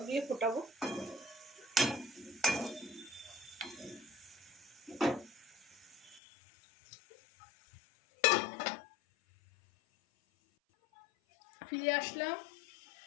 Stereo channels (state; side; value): drops out; right; at 6.2 s